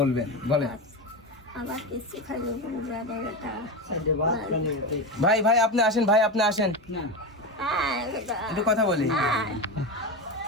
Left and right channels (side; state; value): both; normal; correlation 0.18